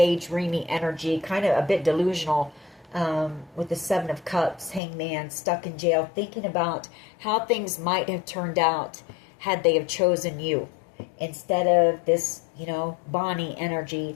energy, kind of a bit delusional, with the Seven of Cups, Hangman, stuck in jail, thinking about how things might have turned out had they have chosen you. Instead of this, you know, Bonnie energy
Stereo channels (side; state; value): right; drops out; at 4.8 s